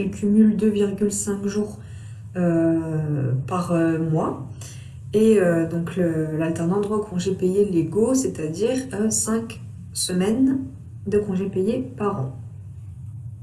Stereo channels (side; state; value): both; identical; correlation 1.00